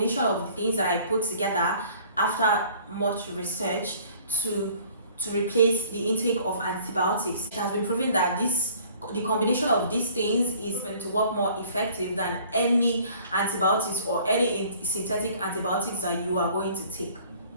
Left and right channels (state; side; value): inverted; both; correlation -0.53